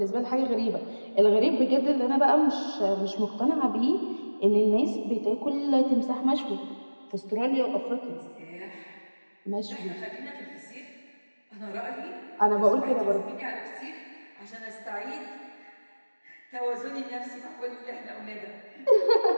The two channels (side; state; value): both; inverted; correlation -1.00